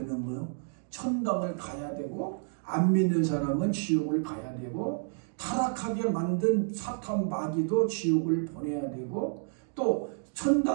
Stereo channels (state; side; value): silent; left; 56 dB below the other